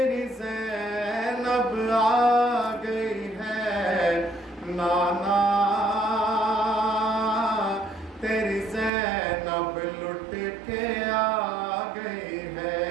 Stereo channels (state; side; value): drops out; left; at 8.9 s